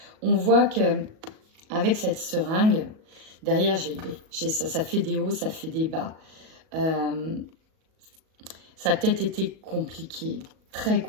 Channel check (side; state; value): left; late; 37 ms